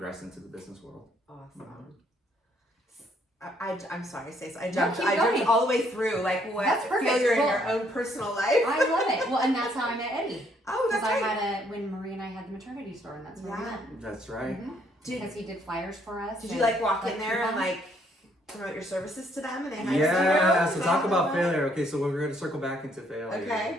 into the business world. Awesome. I'm sorry, Stacey. I No, jumped keep going. all the way through. Like what That's perfect. failure in Well, your own personal life. I love it. Well, and that's how I met Eddie. Oh, Because that's I right. had when Marie and I had the maternity store, and that's where we Yeah. met. That's right. Because he did flyers for us. Did you and, like walk in there and coupons. like promote your services to them and they had Yeah, you? so talk about failure. Okay, so we're going to circle back into failure. Okay,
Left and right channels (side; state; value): both; normal; correlation 0.68